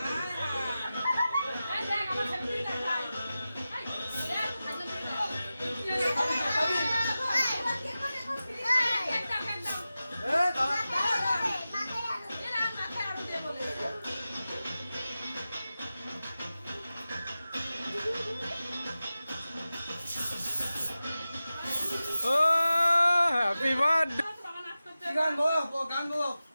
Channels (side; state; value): both; inverted; correlation -0.94